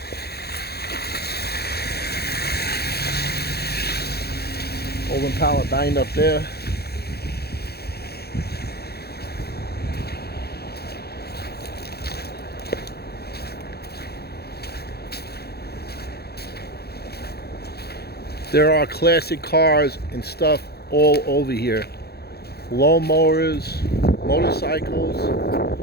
Old Impala banged up there. There are classic cars and stuff all over here. Lawnmowers, motorcycles.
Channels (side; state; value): right; late; 0.46 ms